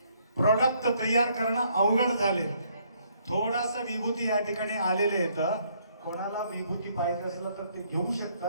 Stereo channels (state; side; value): inverted; both; correlation -0.68